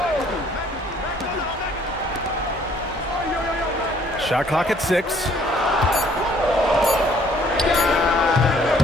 Shot clock at 6.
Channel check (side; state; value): both; normal; correlation 0.61